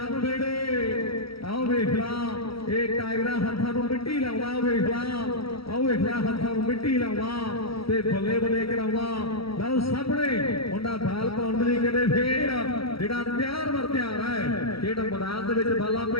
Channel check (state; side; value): late; right; 0.75 ms